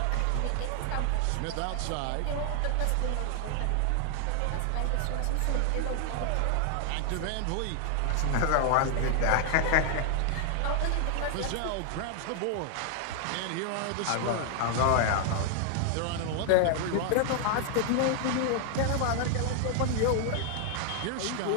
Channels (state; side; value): different; both; correlation 0.00